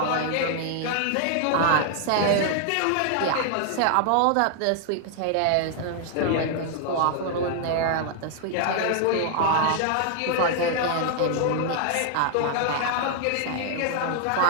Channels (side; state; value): both; different; correlation 0.00